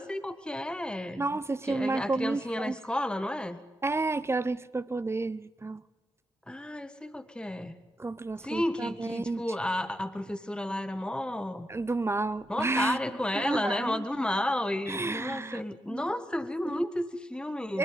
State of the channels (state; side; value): normal; both; correlation 0.85